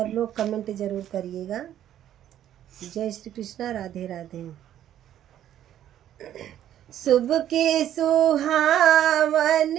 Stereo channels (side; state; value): left; quieter; 11.3 dB